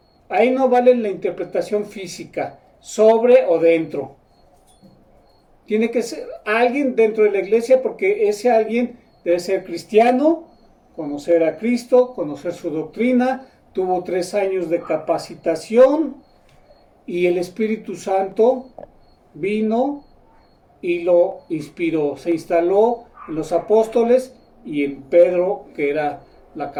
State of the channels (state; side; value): identical; both; correlation 1.00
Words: Ahí no vale la interpretación física, sobre o dentro. Tiene que ser alguien dentro de la iglesia porque ese alguien debe ser cristiano, conocer a Cristo, conocer su doctrina, tuvo 3 años de capacitación y el Espíritu Santo vino y lo inspiró. Se instaló en los apóstoles y en Pedro, que era la